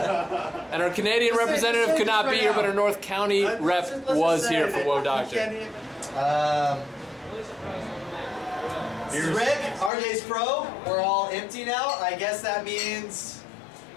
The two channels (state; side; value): drops out; right; at 9.9 s